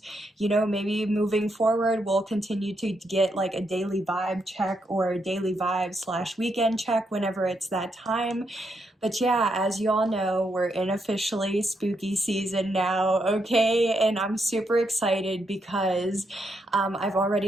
maybe moving forward we'll continue to get like a daily vibe check or a daily vibe / weekend check whenever it's that time. But yeah, as you all know, we're in officially spooky season now, okay? And I'm super excited because I've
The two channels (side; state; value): both; normal; correlation 0.80